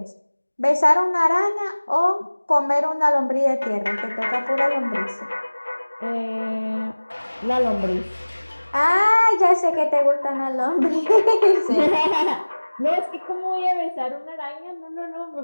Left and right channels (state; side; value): inverted; both; correlation -1.00